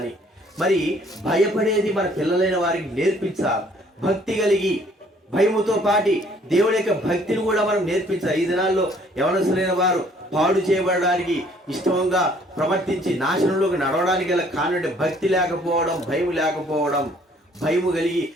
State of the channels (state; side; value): normal; both; correlation 0.60